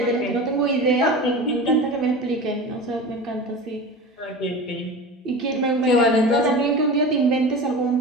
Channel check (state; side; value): normal; both; correlation 0.31